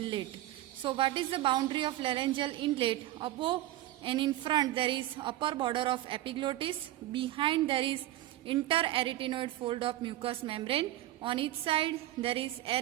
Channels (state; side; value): quieter; left; 15.2 dB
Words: So what is the boundary of laryngeal inlet? Above and in front there is upper border of epiglottis. Behind there is interarytenoid fold of mucous membrane. On each side there is